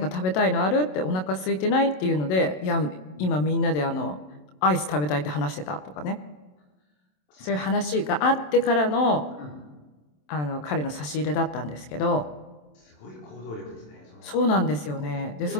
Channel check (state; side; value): late; right; 27 ms